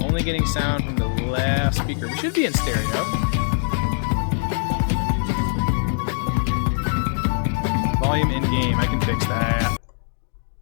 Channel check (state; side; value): silent; right; digital silence